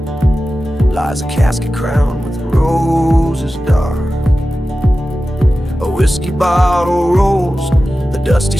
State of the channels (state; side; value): normal; both; correlation 0.94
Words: lies a casket crowned with roses dark. A whiskey bottle rolls, the dusty